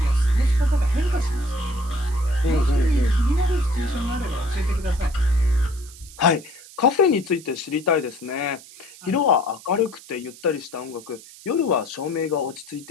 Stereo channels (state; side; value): noise; right; hiss, 19 dB below the sound